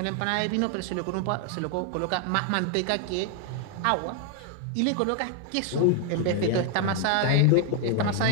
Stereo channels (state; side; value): different; both; correlation 0.00